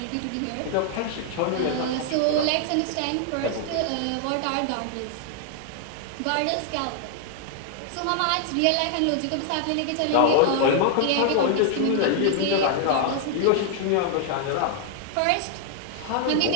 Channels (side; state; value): both; different; correlation 0.00